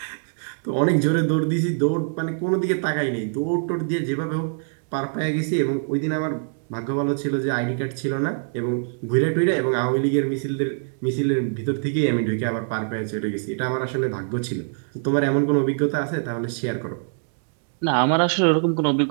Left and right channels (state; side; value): silent; left; digital silence